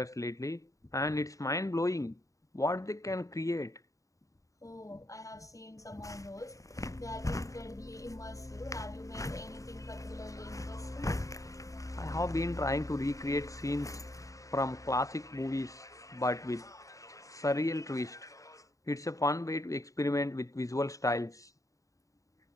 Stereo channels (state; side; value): late; right; 0.16 ms